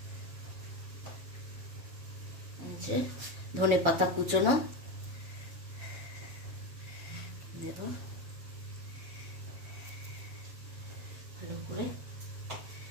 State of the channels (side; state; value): left; late; 7.2 ms